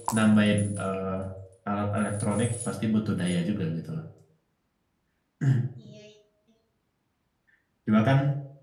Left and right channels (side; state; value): both; identical; correlation 1.00